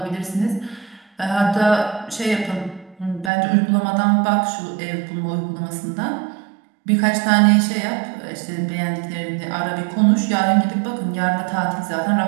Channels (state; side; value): drops out; left; at 3.3 s